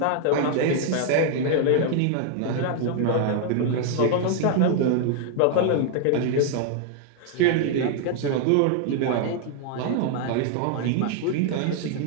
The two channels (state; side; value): different; both; correlation 0.00